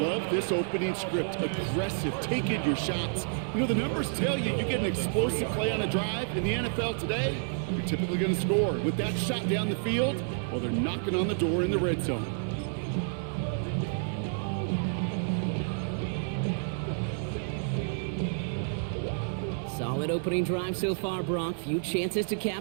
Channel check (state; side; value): silent; left; digital silence